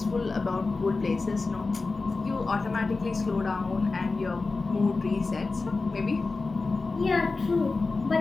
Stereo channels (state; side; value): quieter; right; 3.8 dB